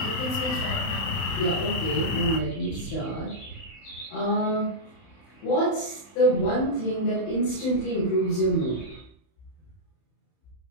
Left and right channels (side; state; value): right; late; 31 ms